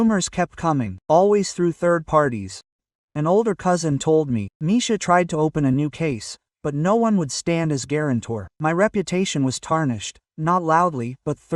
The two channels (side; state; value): both; identical; correlation 1.00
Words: kept coming, always through third parties. An older cousin told me, Misha tried to open a new case, but no one would stand as guarantor. My reputation was tarnished, not loudly, but